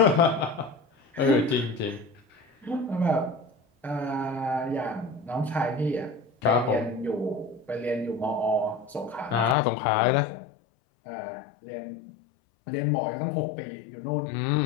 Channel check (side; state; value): right; drops out; at 9.6 s